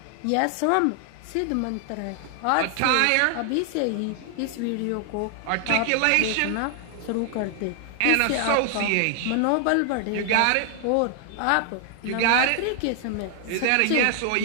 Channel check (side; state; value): both; different; correlation 0.00